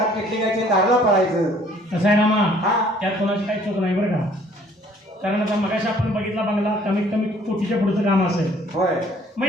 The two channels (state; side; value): normal; both; correlation 0.58